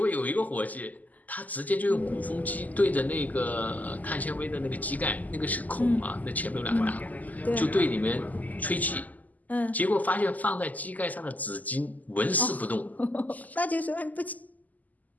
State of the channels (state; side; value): late; right; 0.079 ms